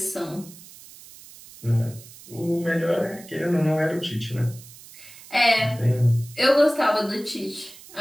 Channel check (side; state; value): right; noise; hiss, 19 dB below the sound